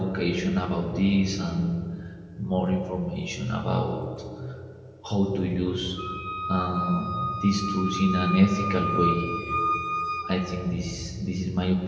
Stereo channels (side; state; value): both; identical; correlation 1.00